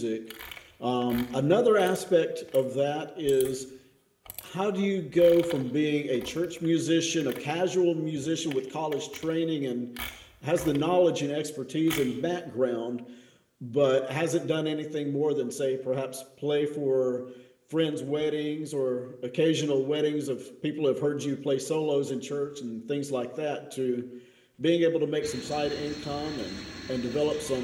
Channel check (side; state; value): both; identical; correlation 1.00